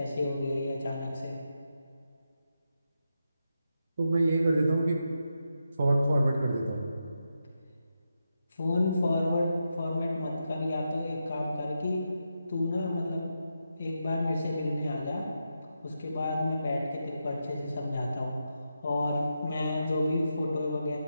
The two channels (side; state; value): both; inverted; correlation -0.86